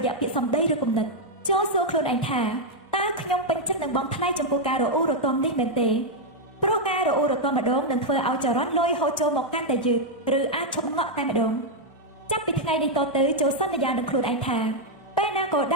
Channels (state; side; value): normal; both; correlation -0.01